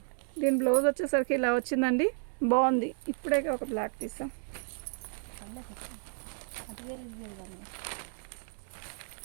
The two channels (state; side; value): silent; left; 56 dB below the other